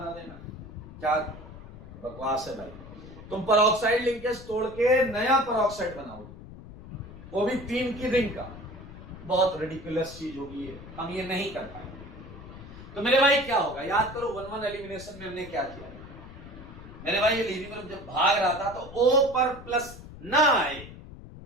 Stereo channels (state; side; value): noise; left; rumble, 15 dB below the sound